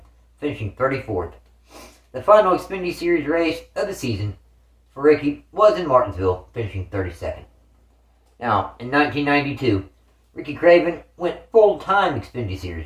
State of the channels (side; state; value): both; identical; correlation 1.00